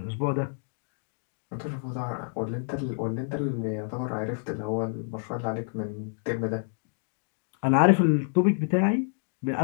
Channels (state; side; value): silent; right; digital silence